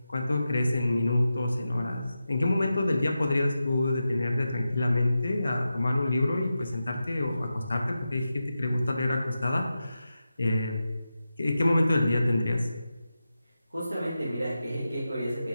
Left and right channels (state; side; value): inverted; both; correlation -0.91